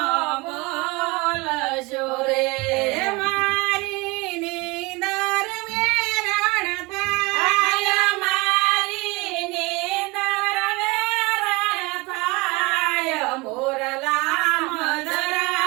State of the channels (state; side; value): quieter; left; 24.6 dB